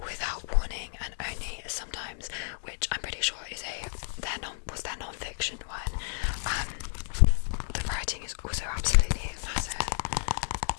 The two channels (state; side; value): silent; right; digital silence